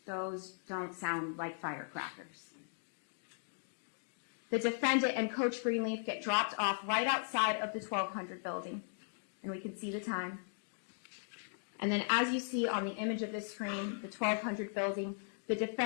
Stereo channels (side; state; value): right; silent; digital silence